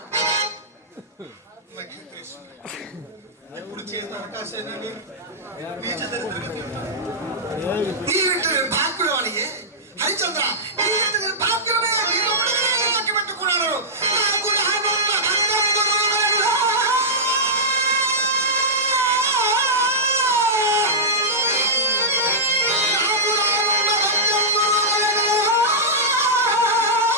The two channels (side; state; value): both; normal; correlation -0.12